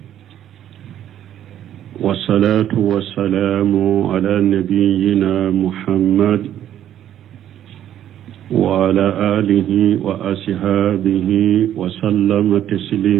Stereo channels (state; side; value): quieter; left; 11.1 dB